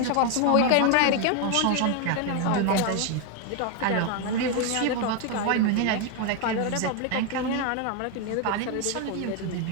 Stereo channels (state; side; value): different; both; correlation 0.01